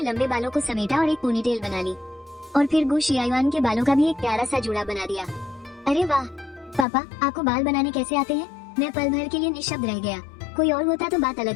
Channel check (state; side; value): drops out; right; at 6.9 s